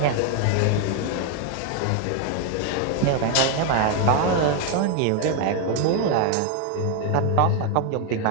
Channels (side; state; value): both; different; correlation 0.01